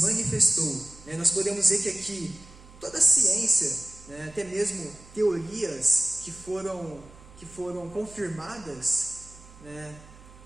Nós podemos ver que aqui toda a ciência, até mesmo teorias que foram confirmadas,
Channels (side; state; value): right; noise; hum, 21 dB below the sound